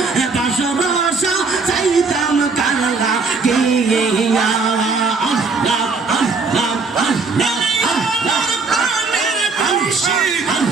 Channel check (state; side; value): quieter; left; 4.3 dB